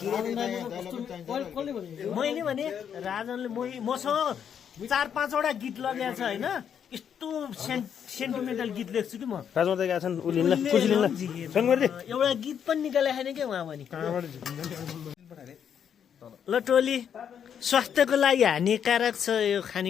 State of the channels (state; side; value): quieter; right; 8.3 dB